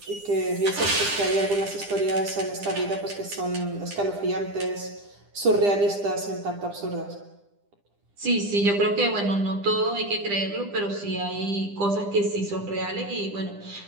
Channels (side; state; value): left; late; 10 ms